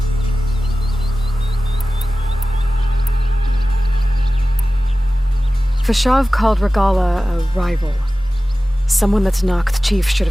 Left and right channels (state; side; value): normal; both; correlation 0.96